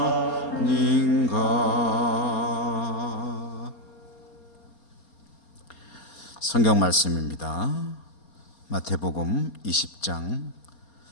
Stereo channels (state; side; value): late; right; 4.3 ms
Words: 아닌가. 성경 말씀입니다. 마태복음 20장